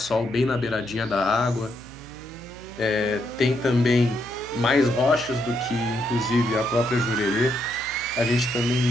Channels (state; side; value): noise; right; hum, 19 dB below the sound